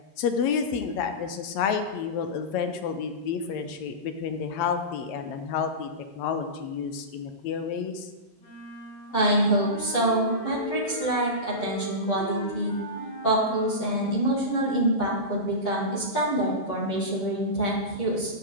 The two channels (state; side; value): late; right; 9.3 ms